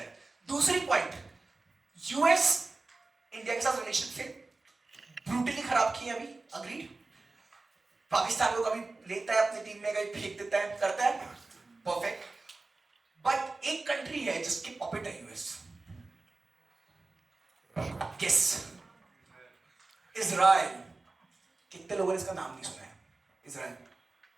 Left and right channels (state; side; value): quieter; left; 3.4 dB